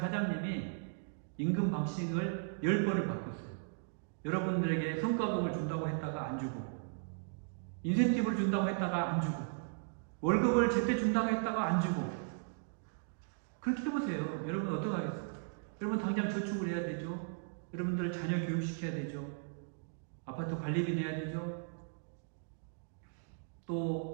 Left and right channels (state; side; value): silent; left; digital silence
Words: 임금 박싱을 10번을 바꿨어요. 여러분들에게 성과급을 준다고 했다가 안 주고, 인센티브를 준다고 했다가 안 주고, 월급을 제때 준다고 했다가 안 주고, 그렇게 해보세요. 여러분 어떡하겠어요? 여러분 당장 저축을 해야 되죠. 여러분들 자녀 교육시켜야 되죠. 아파트 관리비 내야 되죠.